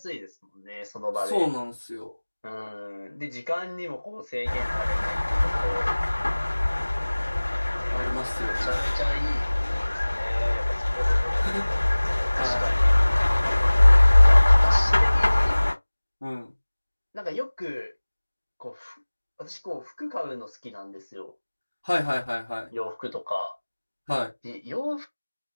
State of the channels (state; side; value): inverted; both; correlation -1.00